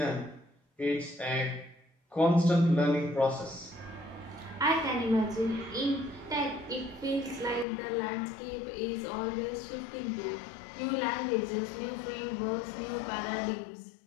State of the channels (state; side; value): drops out; right; at 7.7 s